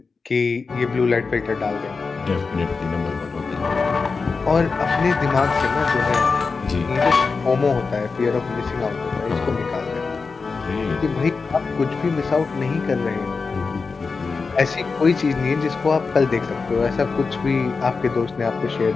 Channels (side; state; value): right; quieter; 4.6 dB